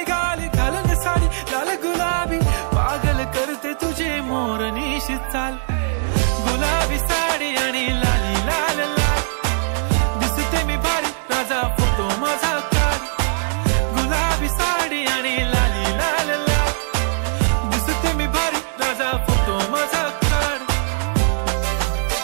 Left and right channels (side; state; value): left; silent; digital silence